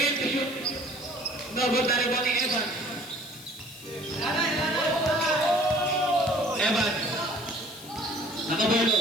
to shoot. No good na rin ni Evans. Evans. Nakabolo.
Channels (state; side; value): noise; left; hiss, 17 dB below the sound